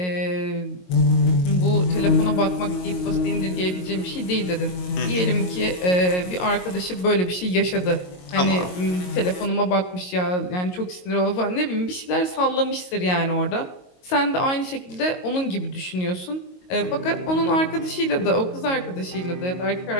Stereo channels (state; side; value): late; right; 22 ms